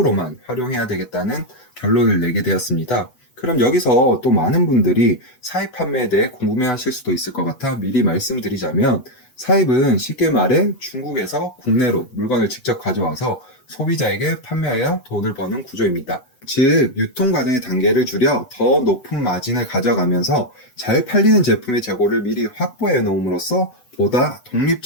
활용해야 되겠다는 결론을 내게 되었습니다. 그럼 여기서 또 많은 분들이 사입 판매에 대해 궁금해하실 수도 있을 것 같아 미리 말씀드리자면 사입은 쉽게 말해 중국에서 국내로 물건을 직접 가져와서 소비자에게 판매하여 돈을 버는 구조입니다. 즉 유통 과정의 단계를 줄여 더 높은 마진을 가져가면서 잘 팔리는 제품의 재고를 미리 확보해 놓음으로써 보다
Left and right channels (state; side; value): late; right; 8.0 ms